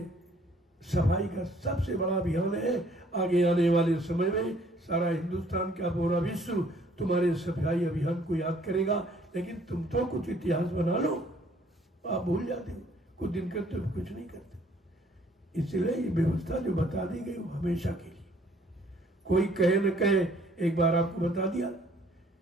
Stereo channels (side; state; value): both; normal; correlation 0.61